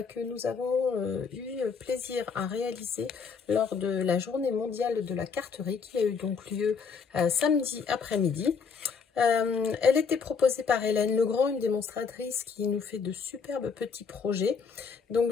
que nous avons eu plaisir à réaliser lors de la journée mondiale de la carterie qui a eu donc lieu samedi après-midi. Elle était proposée par Hélène Legrand, une démonstratrice qui nous fait de superbes petits projets. Donc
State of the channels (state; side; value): quieter; right; 5.7 dB